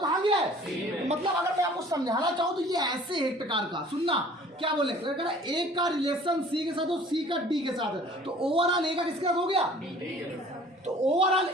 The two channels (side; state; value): both; normal; correlation 0.50